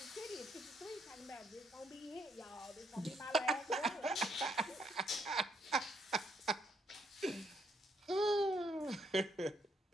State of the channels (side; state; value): both; normal; correlation 0.73